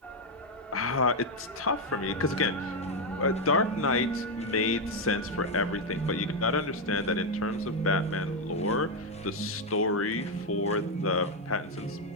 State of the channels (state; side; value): normal; both; correlation 0.04